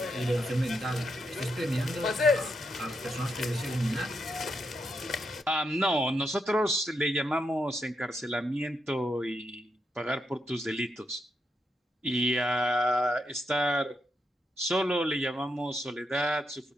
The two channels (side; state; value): both; normal; correlation 0.82